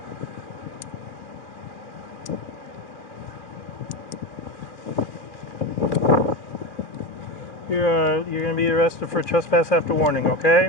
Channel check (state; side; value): late; right; 2.3 ms